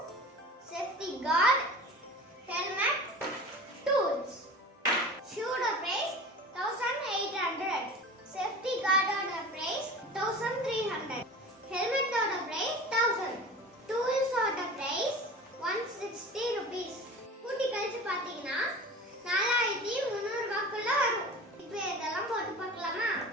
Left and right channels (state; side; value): normal; both; correlation 0.37